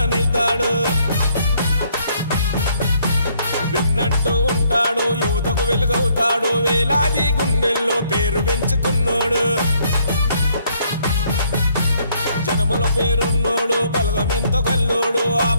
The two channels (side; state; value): both; inverted; correlation -0.68